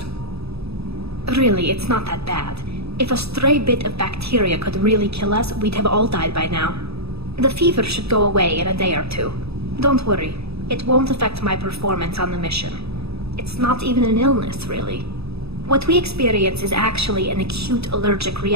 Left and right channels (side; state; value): left; late; 0.78 ms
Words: Really, it's not that bad. If a stray bit of bacteria could really kill us, we'd have all died by now. The fever should go away in a day or two. Don't worry, it won't affect my performance on the mission. It's not even an illness, really. What we experience is actually an acute allergic